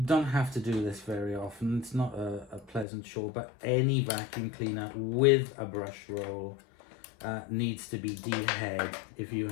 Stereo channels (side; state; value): right; drops out; at 2.9 s